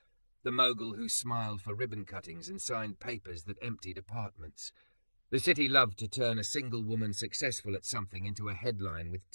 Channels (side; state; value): both; inverted; correlation -1.00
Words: the Mogul who smiled for ribbon cuttings and signed papers that emptied apartments. The city loved to turn a single woman successful at something into a headline with